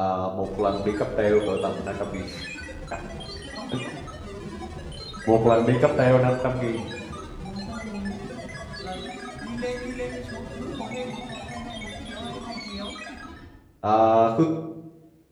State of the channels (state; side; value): identical; both; correlation 1.00